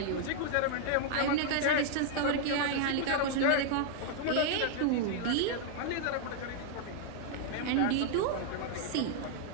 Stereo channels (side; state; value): both; different; correlation -0.01